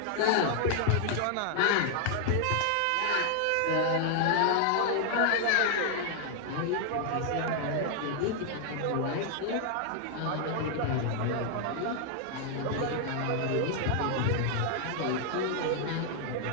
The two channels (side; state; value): both; different; correlation 0.00